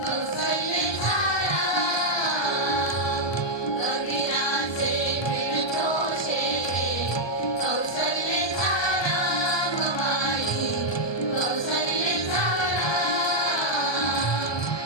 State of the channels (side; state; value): right; late; 1.2 ms